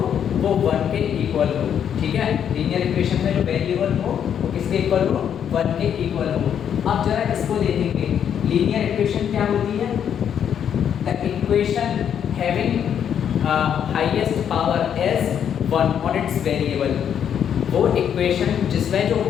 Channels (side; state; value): right; quieter; 8.7 dB